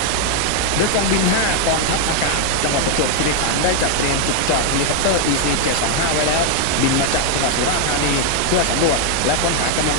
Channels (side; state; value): both; different; correlation 0.00